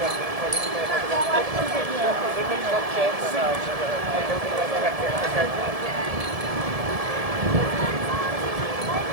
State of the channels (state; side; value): late; left; 1.7 ms